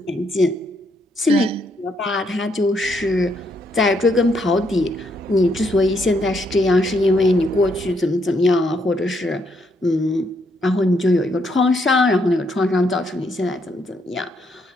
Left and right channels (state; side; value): normal; both; correlation 0.74